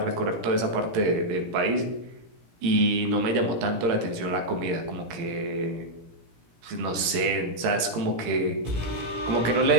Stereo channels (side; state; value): left; late; 17 ms